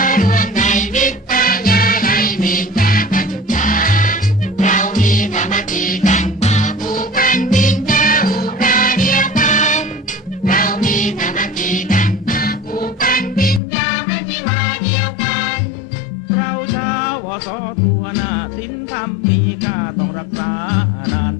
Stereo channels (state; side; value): drops out; right; at 13.6 s